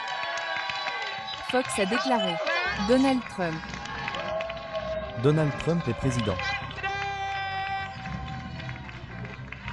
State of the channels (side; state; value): both; identical; correlation 1.00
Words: Fox a déclaré. Donald Trump. Donald Trump est président.